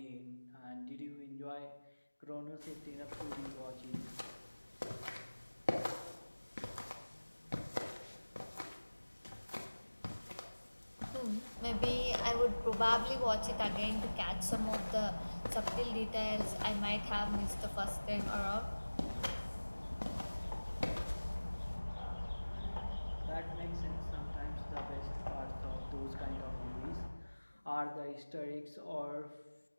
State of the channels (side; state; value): both; inverted; correlation -1.00